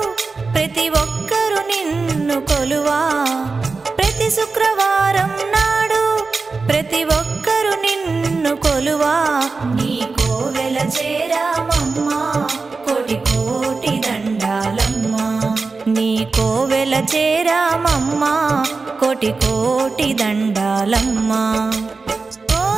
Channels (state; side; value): quieter; left; 4.2 dB